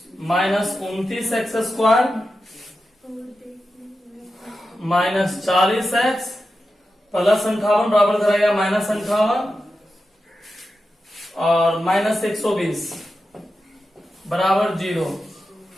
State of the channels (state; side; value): normal; both; correlation 0.91